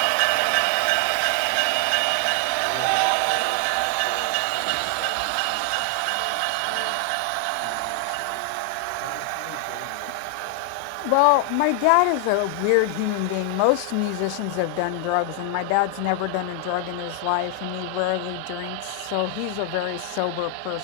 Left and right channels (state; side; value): different; both; correlation 0.00